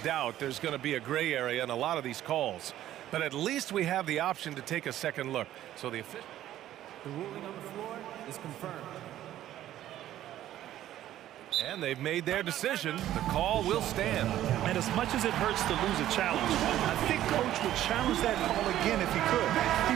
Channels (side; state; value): left; quieter; 12.9 dB